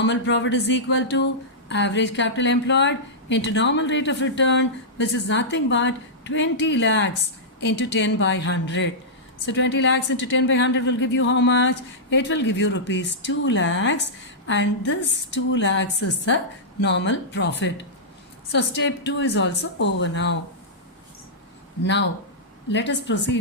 profit is equal to average capital employed into normal rate of return, which is nothing but 20 lakhs into 10 by 100. So 20 lakhs into 10 by 100 will give you how much? It will give you rupees 2 lakhs, and this 2 lakhs is the normal profit. So step 2 is also over now. Now let us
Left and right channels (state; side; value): normal; both; correlation -0.12